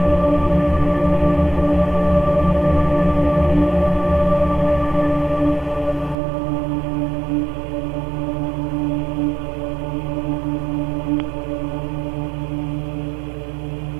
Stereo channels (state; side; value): drops out; left; at 6.2 s